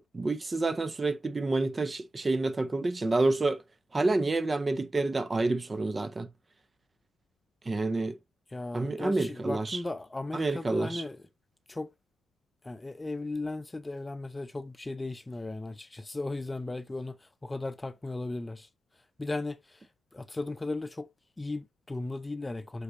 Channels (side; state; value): both; normal; correlation 0.95